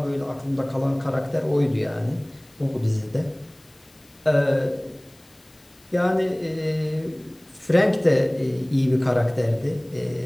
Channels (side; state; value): left; noise; hiss, 29 dB below the sound